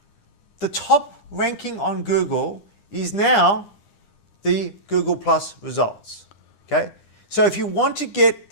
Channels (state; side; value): late; right; 9.9 ms